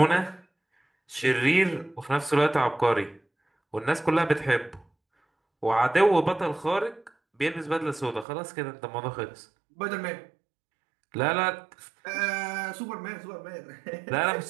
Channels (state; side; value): drops out; left; at 8.2 s